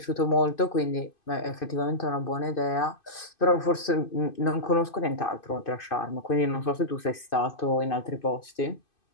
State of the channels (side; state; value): right; late; 2.5 ms